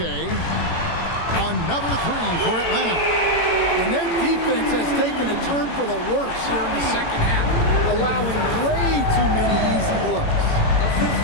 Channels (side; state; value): right; late; 18 ms